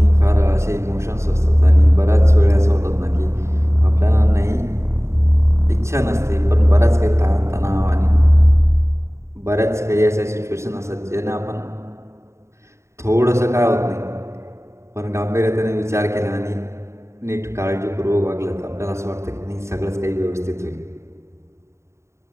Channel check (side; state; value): left; late; 0.14 ms